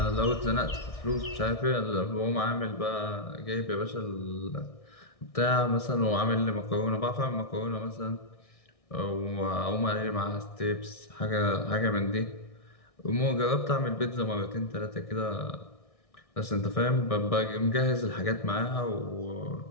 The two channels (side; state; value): right; late; 1.6 ms